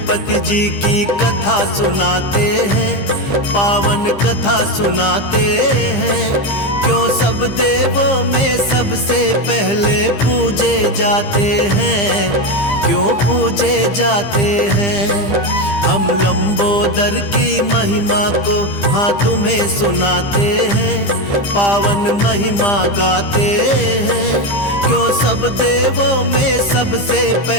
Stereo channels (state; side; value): late; right; 15 ms